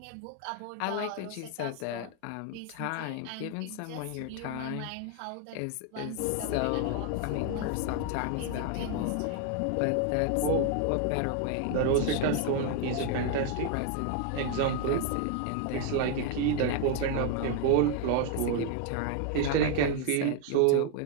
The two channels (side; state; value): both; different; correlation 0.01